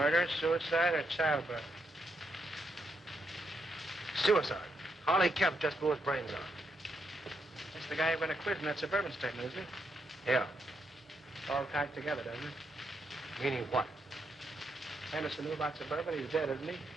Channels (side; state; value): both; normal; correlation 0.79